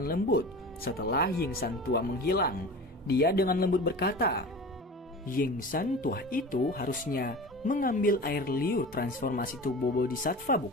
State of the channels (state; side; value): normal; both; correlation 0.34